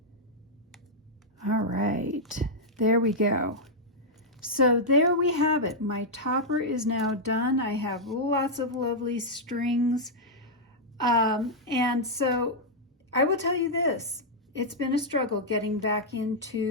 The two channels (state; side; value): normal; both; correlation -0.05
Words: All right, there we go. So there we have it. My topper is now done. I have lots of lovely strings. And so I will tell you this, it's been a struggle getting back